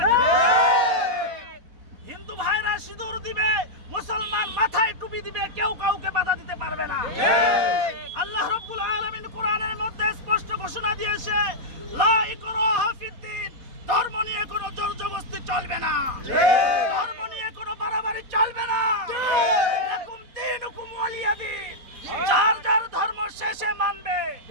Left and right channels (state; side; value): late; left; 4.1 ms